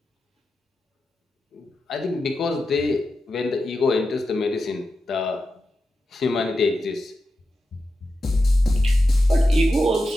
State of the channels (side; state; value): both; normal; correlation 0.90